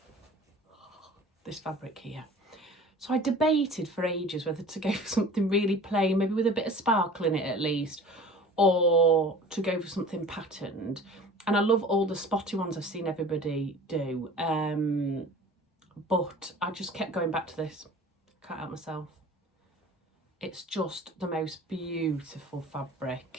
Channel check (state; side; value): normal; both; correlation 0.43